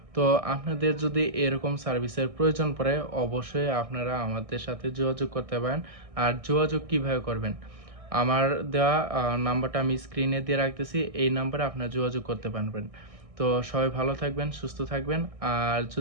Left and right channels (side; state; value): left; late; 1.6 ms